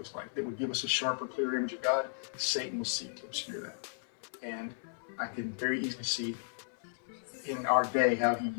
like, that would give us a sharper, clearer image of God, Satan will seek to obscure that. And I can very easily see in our day how he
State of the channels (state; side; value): silent; right; 55 dB below the other